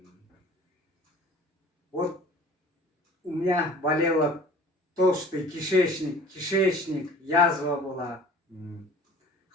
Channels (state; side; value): normal; both; correlation 0.46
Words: Вот у меня болело толстый кишечник, язва была.